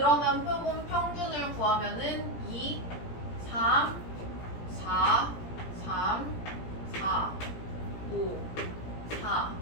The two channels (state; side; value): late; right; 17 ms